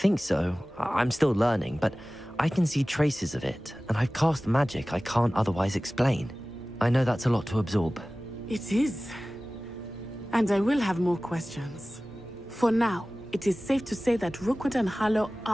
so. I'm still learning, but I can see traces of it, and I've cast magic I can't otherwise explain. I know that's a lot to absorb. It is. And I will have more questions. For now, it is safe to say that Rookwood and Harlow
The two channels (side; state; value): both; normal; correlation 0.97